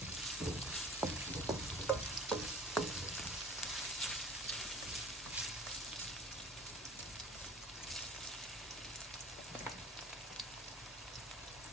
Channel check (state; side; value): normal; both; correlation 0.44